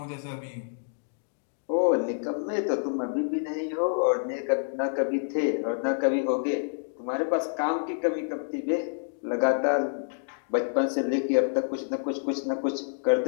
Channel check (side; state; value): right; silent; digital silence